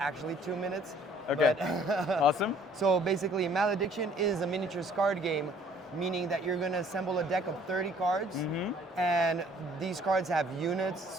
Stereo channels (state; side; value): normal; both; correlation 0.58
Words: 2 minutes. Okay. But Awesome. So basically, Malediction is a miniatures card game, meaning that you're gonna assemble a deck of 30 cards, and these cards have units,